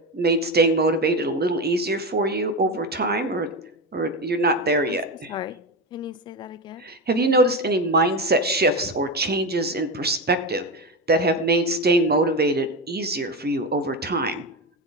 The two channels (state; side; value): normal; both; correlation 0.18